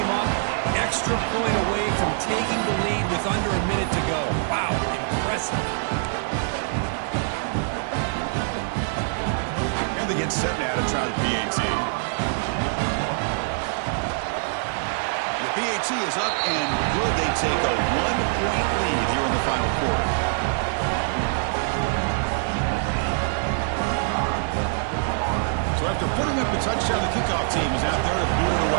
up, extra point away from taking the lead with under a minute to go. Wow, impressive. They get set now to try the PAT. The PAT is up and good. They take a 1-point lead here in the final quarter. So after putting up a touchdown, the kickoff team is out there to boot it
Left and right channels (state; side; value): silent; left; 58 dB below the other